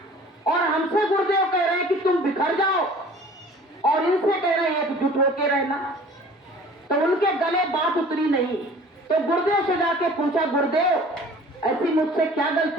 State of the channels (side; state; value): both; normal; correlation 0.47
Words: और हमसे गुरुदेव कह रहे हैं कि तुम बिखर जाओ, और इनसे कह रहे हैं एकजुट होकर रहना। तो उनके गले बात उतरी नहीं। तो गुरुदेव से जाके पूछा, गुरुदेव ऐसी मुझसे क्या